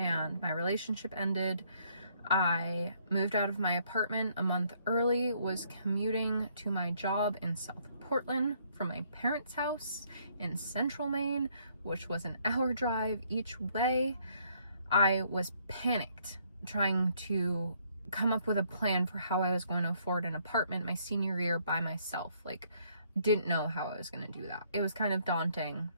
my relationship ended. I moved out of my apartment a month early, was commuting to my job in South Portland from my parents' house in Central Maine, which was an hour drive each way. I was panicked trying to come up with a plan for how I was going to afford an apartment my senior year by myself. Like, didn't know how I was going to do that. It was kind of daunting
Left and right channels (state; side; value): inverted; both; correlation -0.67